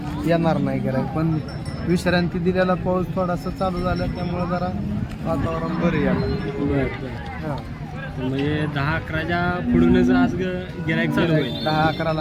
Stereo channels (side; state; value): both; identical; correlation 1.00